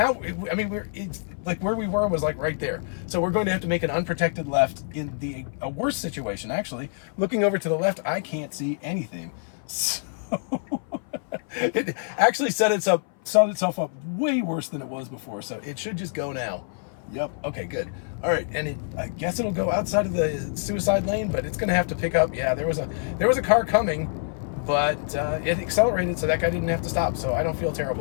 I mean, it's like where we were was like right there. So we're going to have to make an unprotected left in a worse situation, actually. Looking over to the left, I can't see anything. So it actually set itself up way worse than it was before, so it should just go now. Yep, okay, good. All right, and I guess it'll go outside of the suicide lane, but it's gonna have to pick up. Yeah, there was a car coming, but it accelerated, so that guy didn't have to stop, so I don't feel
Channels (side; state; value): right; silent; 58 dB below the other